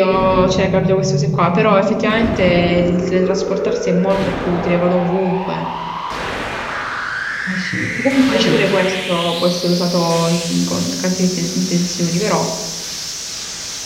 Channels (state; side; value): identical; both; correlation 1.00